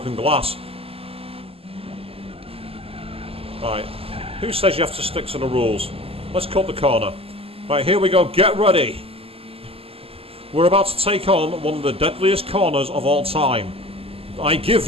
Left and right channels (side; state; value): left; late; 0.28 ms